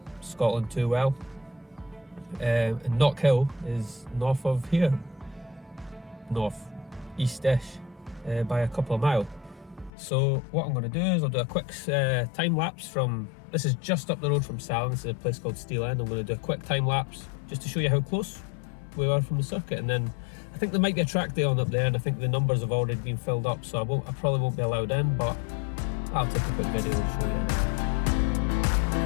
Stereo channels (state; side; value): drops out; right; at 9.9 s